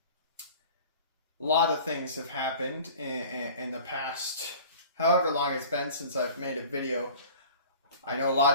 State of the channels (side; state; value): both; inverted; correlation -0.43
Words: A lot of things have happened in the past, however long it's been since I've made a video. I know a